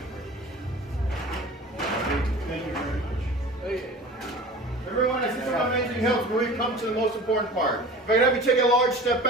Thank you very much. Everyone, as this amazing hills, we come to the most important part. If I could have you take a large step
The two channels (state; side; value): normal; both; correlation 0.39